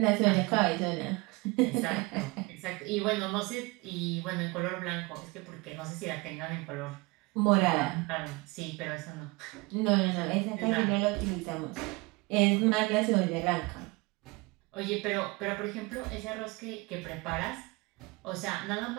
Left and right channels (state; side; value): quieter; left; 25.2 dB